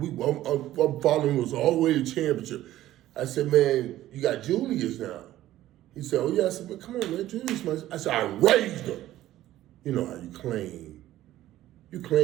following us all the way to championship. I said, man, you got Julius now. He said, oh yeah. I said, man, come on, man, Julius. I said, I raised him. You know how you claim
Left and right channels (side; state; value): left; quieter; 14.3 dB